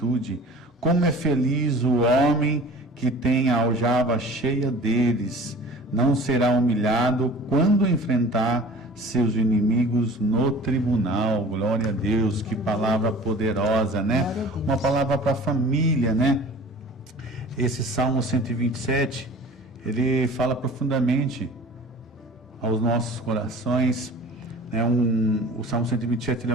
Como é feliz o homem que tem a aljava cheia deles. Não será humilhado quando enfrentar seus inimigos no tribunal. Glória a Deus, que palavra poderosa, né? Uma palavra para a família, né? Esse Salmo 127, ele fala profundamente aos nossos corações. O Salmo 127 ele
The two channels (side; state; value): both; normal; correlation 0.43